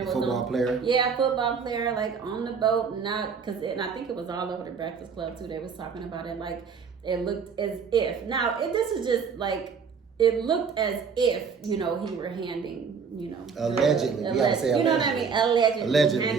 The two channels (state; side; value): quieter; left; 5.9 dB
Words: football player. Yeah, football player, like on the boat, and I think it was all over the Breakfast Club too. They was talking about it. Like, it looked as if. Now, this is just like, it looked as if, you know, he were handing, you know, allegedly, you know what I mean? Allegedly